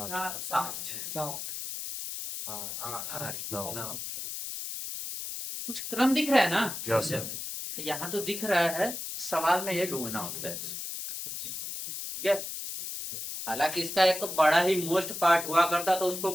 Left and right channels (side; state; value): left; noise; hiss, 6 dB below the sound